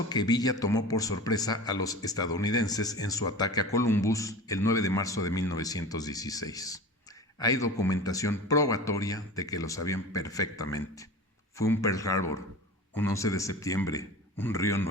que Villa tomó por sorpresa a los estadounidenses en su ataque a Columbus el 9 de marzo de 1916. Hay documentación probatoria de que lo sabían perfectamente. Fue un Pearl Harbor, un 11 de septiembre, un río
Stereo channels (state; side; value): normal; both; correlation 0.34